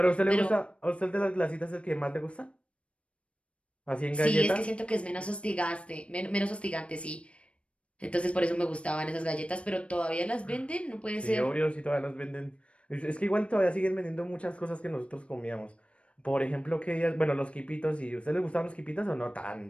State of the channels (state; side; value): late; right; 0.061 ms